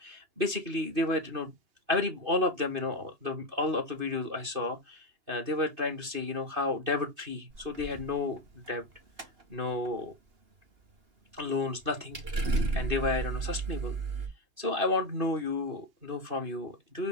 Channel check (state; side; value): late; left; 2.6 ms